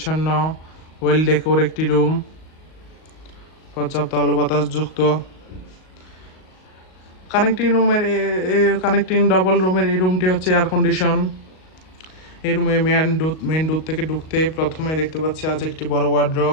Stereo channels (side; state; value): right; late; 38 ms